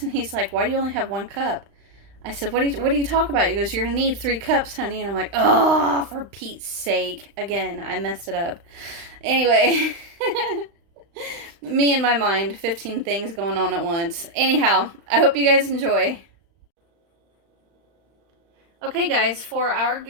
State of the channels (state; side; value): late; left; 35 ms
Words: and he's like, "Why do you only have 1 cup?" I said, "What do you talk about?" He goes, "You're going to need 3 cups, honey." And I'm like, "Oh, for Pete's sake." Again, I messed it up. Anyway, me in my mind, 15 things going on at once. Anyhow, I hope you guys enjoy. Okay, guys, for our